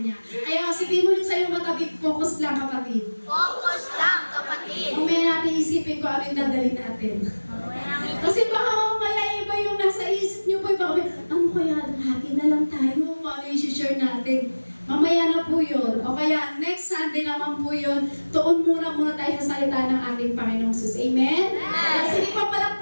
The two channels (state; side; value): inverted; both; correlation -1.00